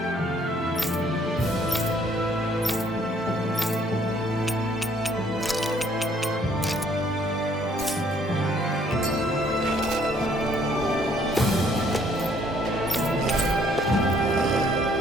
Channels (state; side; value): normal; both; correlation 0.63